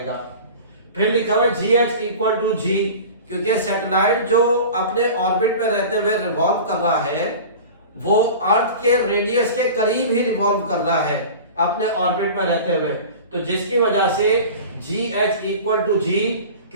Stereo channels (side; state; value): both; inverted; correlation -0.36